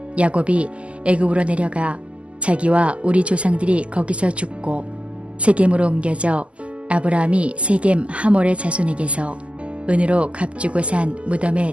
야곱이 애굽으로 내려가 자기와 우리 조상들이 거기서 죽고 세겜으로 옮겨져 아브라함이 세겜 하몰의 자손에게서 은으로 값주고 산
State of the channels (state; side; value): late; left; 0.058 ms